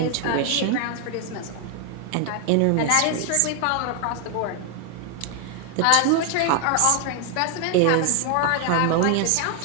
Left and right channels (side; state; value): both; different; correlation 0.01